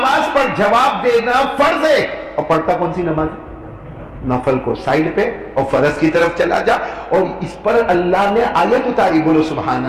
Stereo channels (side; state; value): both; identical; correlation 1.00